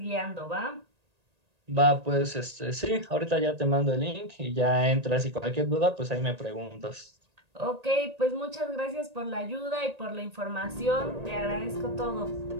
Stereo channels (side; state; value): left; late; 1.8 ms